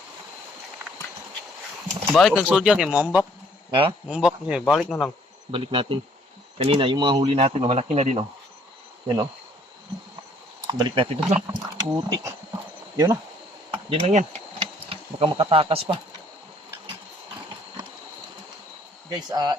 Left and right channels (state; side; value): normal; both; correlation 0.61